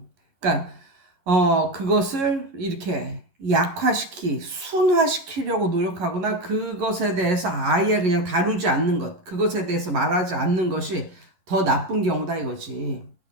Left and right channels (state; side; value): late; left; 11 ms